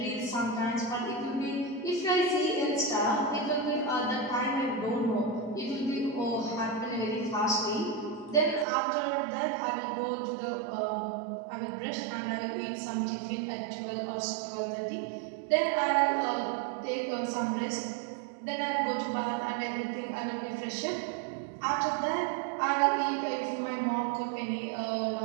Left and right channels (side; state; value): left; drops out; at 8.7 s